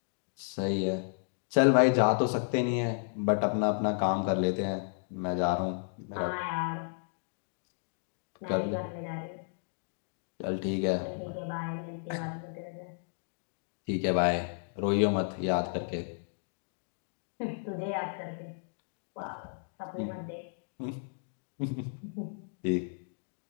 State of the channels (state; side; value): silent; right; digital silence